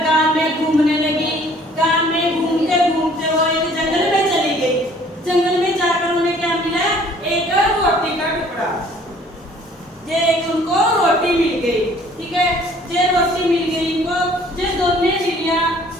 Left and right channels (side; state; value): both; normal; correlation 0.56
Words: गांव में घूमने लगी। गांव में घूमते घूमते वो एक जंगल में चली गई। जंगल में जाकर उन्हें क्या मिला? एक रोटी का टुकड़ा। जे एक उनको रोटी मिल गई, ठीक है। जे रोटी मिल गई इनको, जे दोनों बिल्लियां